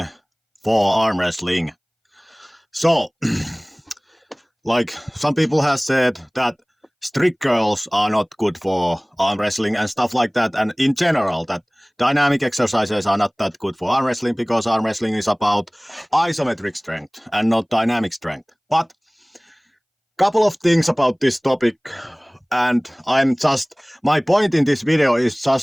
for arm wrestling. So, like some people have said that strict curls are not good for arm wrestling and stuff like that, and in general that dynamic exercises are not that good for arm wrestling because arm wrestling is about isometric strength and not dynamic strength. But couple of things about this topic, and my point in this video is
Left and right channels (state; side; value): identical; both; correlation 1.00